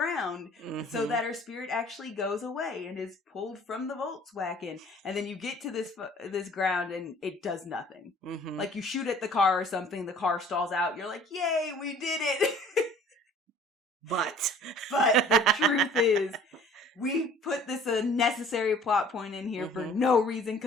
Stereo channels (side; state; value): both; normal; correlation 0.51